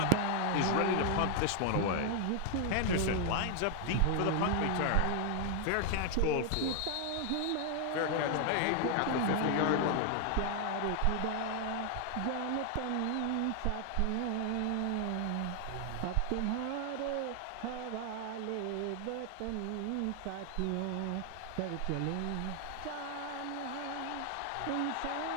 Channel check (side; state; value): both; different; correlation 0.00